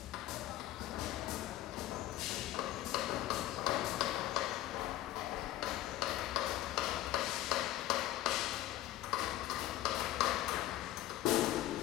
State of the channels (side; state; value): right; quieter; 14.6 dB